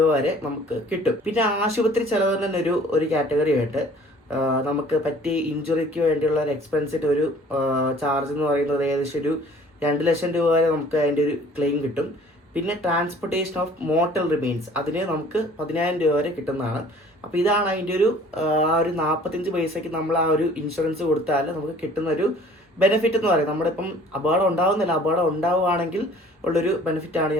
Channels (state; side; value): normal; both; correlation 0.52